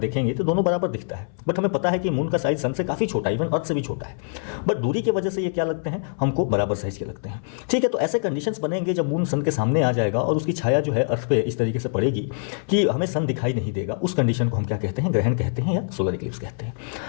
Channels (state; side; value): silent; right; 63 dB below the other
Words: तो दोनों बराबर दिखता है। बट हमें पता है कि मून का साइज सन से काफ़ी छोटा है, इवन अर्थ से भी छोटा है, बट दूरी की वजह से ये क्या लगते हैं, हमको बराबर साइज के लगते हैं। ठीक है, तो ऐसे कंडीशंस बनेंगे जब मून सन के सामने आ जाएगा और उसकी छाया जो है अर्थ पे इस तरीके से पड़ेगी कि हमें सन दिखाई नहीं देगा। उस कंडीशन को हम क्या कहते हैं, ग्रहण कहते हैं या सोलर इक्लिप्स कहते हैं।